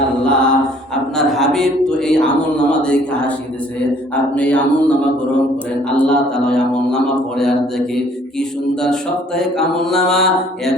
আল্লাহ, আপনার হাবিব তো এই আমল নামা দেখে হাসি দিছে, আপনি এই আমল নামা গ্রহণ করেন। আল্লাহ তাআলা আমল নামা পড়ে আর দেখে কি সুন্দর সাপ্তাহিক আমল নামা, এক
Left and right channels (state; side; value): normal; both; correlation 0.58